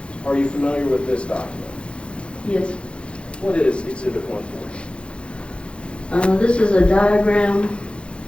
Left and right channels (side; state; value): right; late; 0.058 ms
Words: Are you familiar with this document? Yes. What is Exhibit 140? This is a diagram